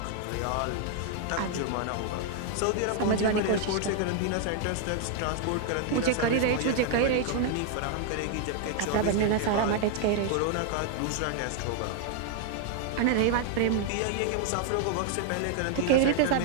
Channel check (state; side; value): different; both; correlation 0.00